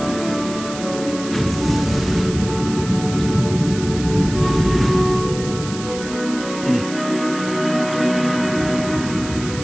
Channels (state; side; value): noise; right; hiss, 12 dB below the sound